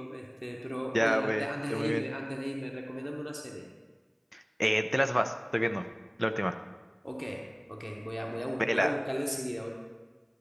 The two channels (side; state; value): both; identical; correlation 1.00